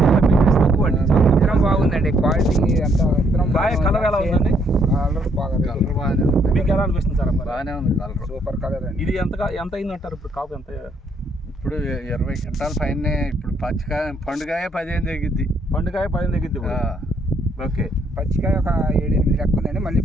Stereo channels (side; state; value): both; normal; correlation 0.70